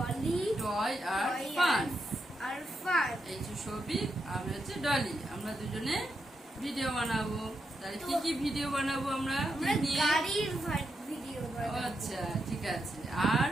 টয় আর ফান। এই যে শফিক, আমি হচ্ছে ডলি। আমরা দুজনে ভিডিও বানাবো। তাহলে কি কি ভিডিও বানাবো আমরা? গাড়ির ভিডিও বানাবো। আচ্ছা, ঠিক আছে।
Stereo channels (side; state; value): both; normal; correlation 0.84